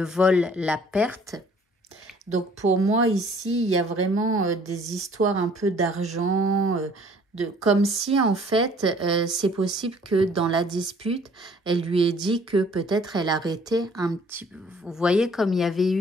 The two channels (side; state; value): both; normal; correlation 0.56